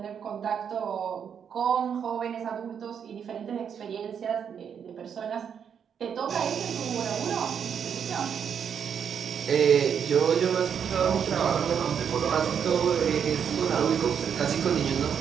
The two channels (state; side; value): quieter; left; 7.7 dB